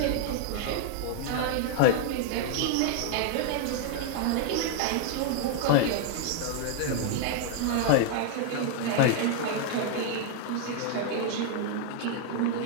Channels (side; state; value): both; different; correlation 0.00